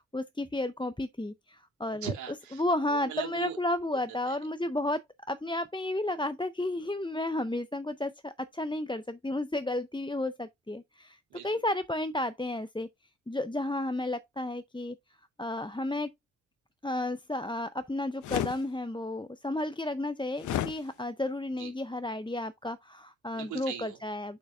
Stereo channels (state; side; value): normal; both; correlation 0.59